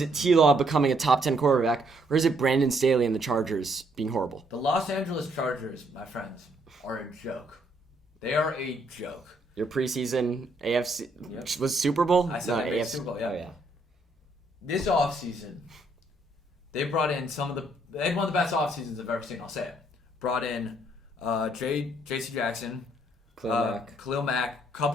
it T-Law becoming a top 10 quarterback? Or is it Brandon Staley and the Chargers being horrible? The Los Angeles Chargers, my friends, are a joke. They are a joke. Your preseason AFC was Super Bowl? I said AFC Super Bowl, yeah. Oh, yeah. This offseason, they brought in they had one of the best offseasons I've ever seen, I'll say it. Brought in J.C. Jackson, Khalil Mack,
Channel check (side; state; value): both; normal; correlation 0.70